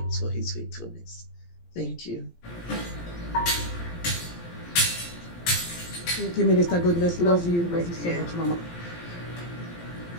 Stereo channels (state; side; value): late; right; 17 ms